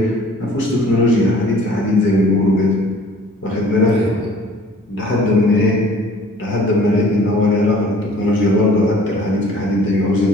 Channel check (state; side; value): normal; both; correlation 0.51